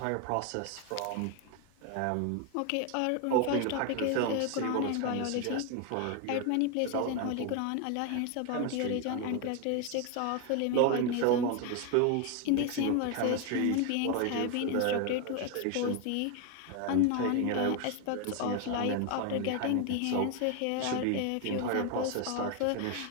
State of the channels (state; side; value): different; both; correlation 0.01